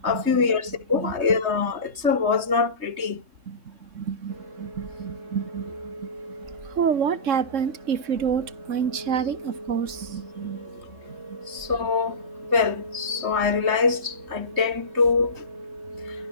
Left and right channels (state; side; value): late; left; 3.2 ms